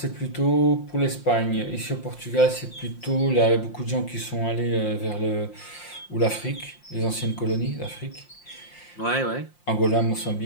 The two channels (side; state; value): right; late; 5.7 ms